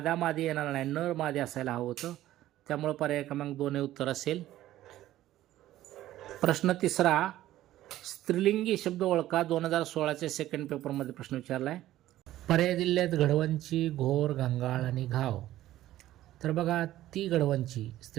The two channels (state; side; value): quieter; left; 14.2 dB